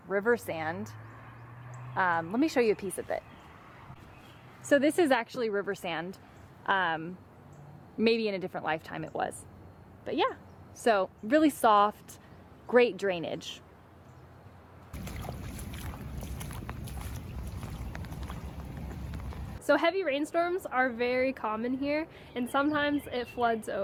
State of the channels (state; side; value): identical; both; correlation 1.00